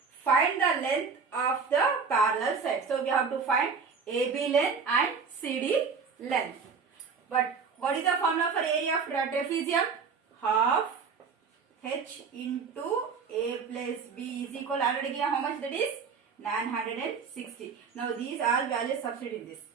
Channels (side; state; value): left; quieter; 5.5 dB